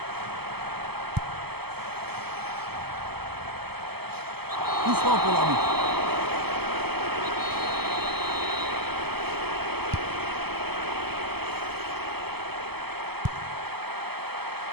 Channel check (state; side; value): late; left; 0.96 ms